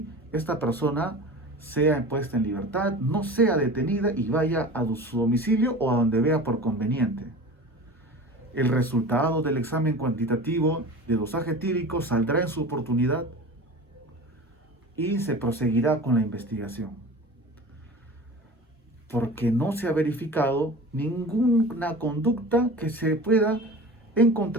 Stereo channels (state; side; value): normal; both; correlation 0.36